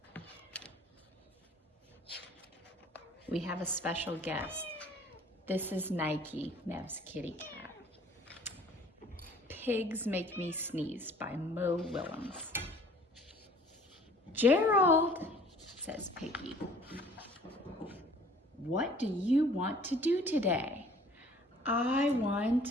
We have a special guest. This is Nike, Nev's kitty cat. Pigs Make Me Sneeze by Mo Willems. Gerald, says Piggy, what do you want to do today? I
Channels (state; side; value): normal; both; correlation 0.52